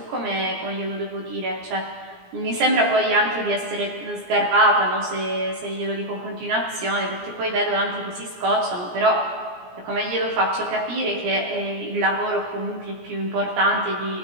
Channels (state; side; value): late; left; 17 ms